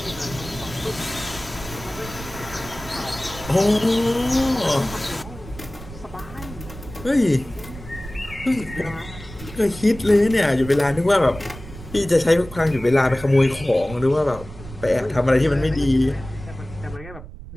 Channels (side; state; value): right; noise; rumble, 14 dB below the sound